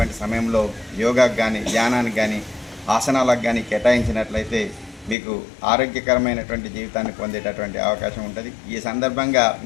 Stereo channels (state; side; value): drops out; right; at 5.2 s